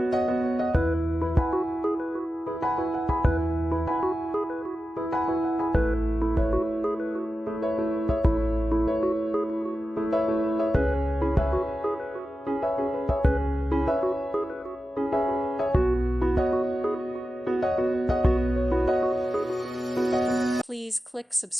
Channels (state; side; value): normal; both; correlation 0.93